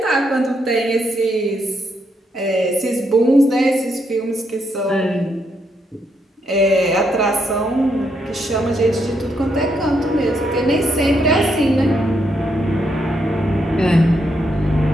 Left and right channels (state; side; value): normal; both; correlation 0.78